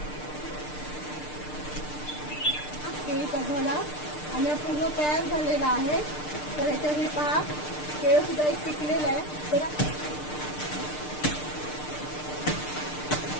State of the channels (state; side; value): late; right; 6.6 ms